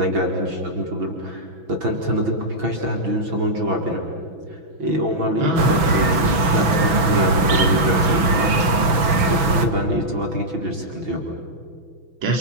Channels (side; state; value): left; late; 6.0 ms